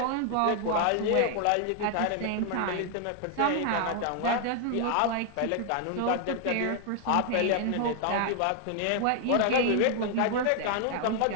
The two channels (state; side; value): different; both; correlation 0.00